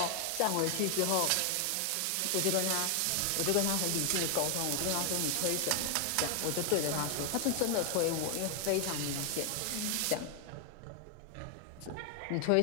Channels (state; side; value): different; both; correlation 0.00